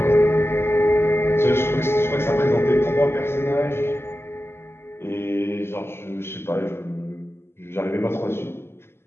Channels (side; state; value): right; late; 0.12 ms